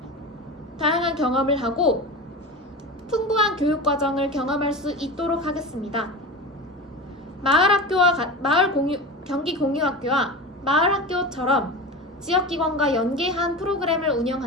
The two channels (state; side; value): normal; both; correlation 0.28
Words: 풍부한 교육과정을 경험할 수 있도록 하겠습니다. 경기 공유학교와 마을학교처럼 지역기관과 연계한 프로그램을